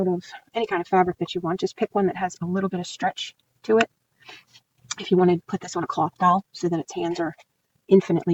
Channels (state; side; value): identical; both; correlation 1.00